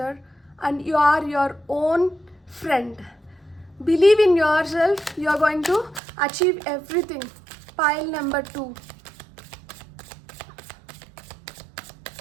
And you are your own friend. Believe in yourself. You are going to achieve everything. Pile number 2.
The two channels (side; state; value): left; drops out; at 6.0 s